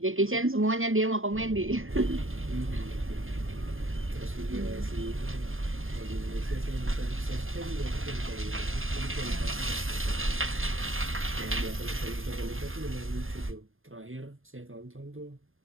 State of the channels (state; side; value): late; left; 0.59 ms